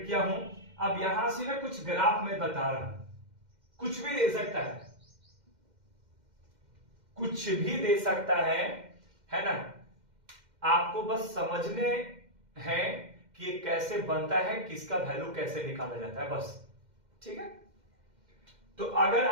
किया हूं। अब यहां से मैं कुछ ग्राफ में बता रहा हूं, कुछ भी दे सकता है, कुछ भी दे सकता है ना। आपको बस समझने हैं कि ये कैसे बनता है, किसका वैल्यू कैसे निकाला जाता है, बस। ठीक है, तो अगर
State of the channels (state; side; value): late; left; 2.1 ms